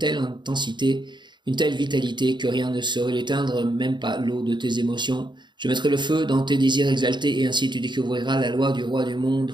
intensité, une telle vitalité que rien ne saurait l'éteindre, même pas l'eau de tes émotions. Je mettrai le feu dans tes désirs exaltés et ainsi tu découvriras la loi du roi du monde.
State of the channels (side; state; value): left; late; 0.22 ms